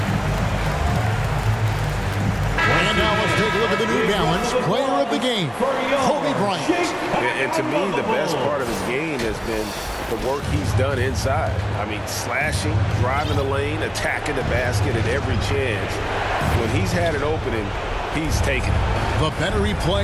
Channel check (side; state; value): both; identical; correlation 1.00